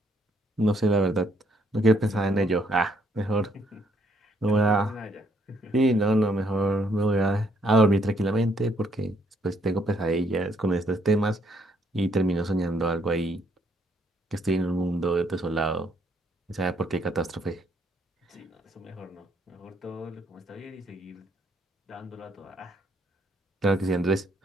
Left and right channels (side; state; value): both; normal; correlation 0.69